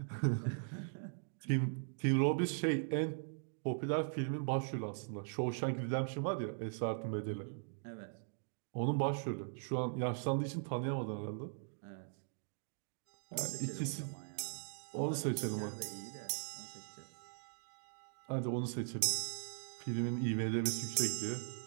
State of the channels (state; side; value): silent; left; digital silence